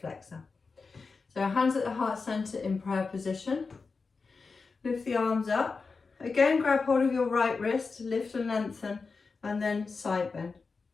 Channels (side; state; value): right; quieter; 4.5 dB